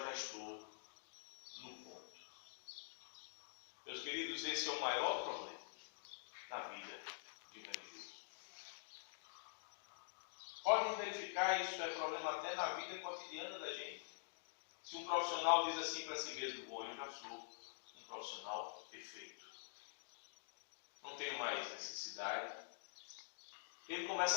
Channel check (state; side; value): silent; right; digital silence